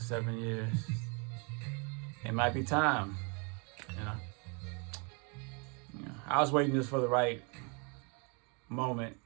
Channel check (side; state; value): left; quieter; 33.7 dB